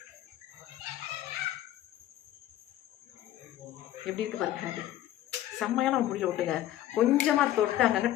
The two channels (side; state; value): right; quieter; 13.2 dB